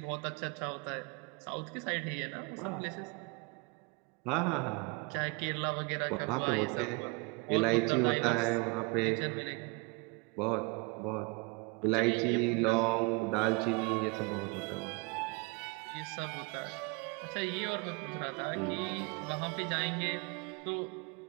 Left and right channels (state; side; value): quieter; left; 29.6 dB